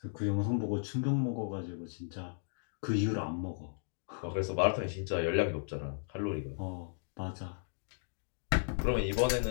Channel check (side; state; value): right; silent; digital silence